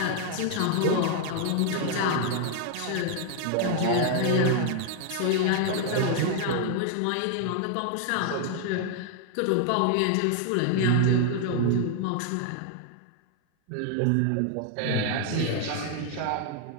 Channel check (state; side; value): different; both; correlation 0.00